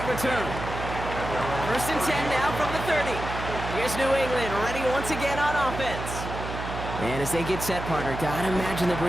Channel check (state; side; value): noise; right; hum, 7 dB below the sound